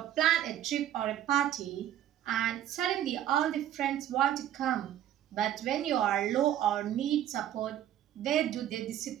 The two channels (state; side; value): quieter; left; 11.5 dB